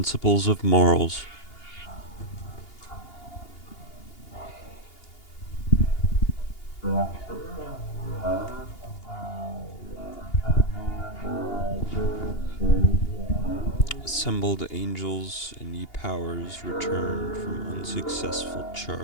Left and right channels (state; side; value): late; right; 2.8 ms